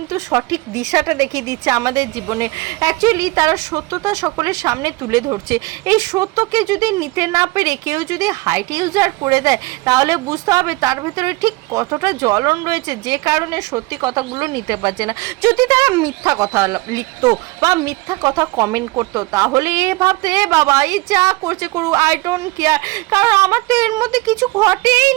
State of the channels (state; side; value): quieter; left; 22.4 dB